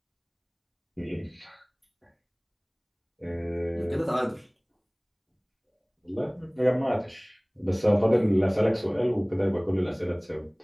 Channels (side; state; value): both; identical; correlation 1.00